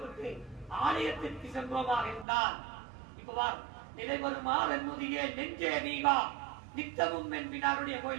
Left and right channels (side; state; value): left; drops out; at 2.2 s